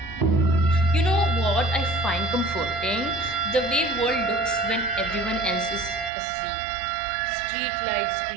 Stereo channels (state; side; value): drops out; left; at 6.1 s